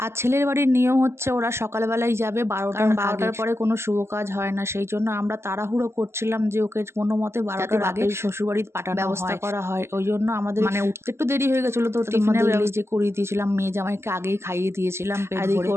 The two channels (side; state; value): left; late; 0.13 ms